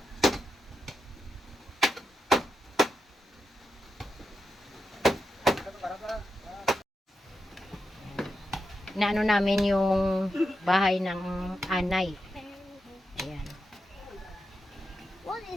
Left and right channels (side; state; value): both; normal; correlation 0.87